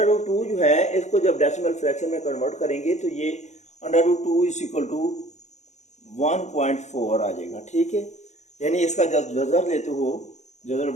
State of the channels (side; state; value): right; late; 0.33 ms